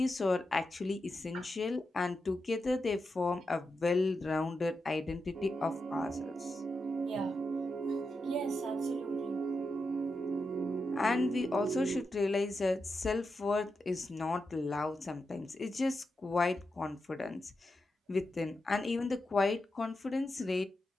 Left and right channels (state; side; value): normal; both; correlation 0.87